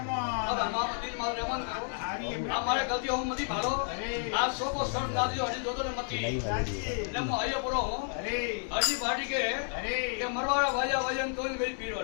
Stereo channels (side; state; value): right; silent; 57 dB below the other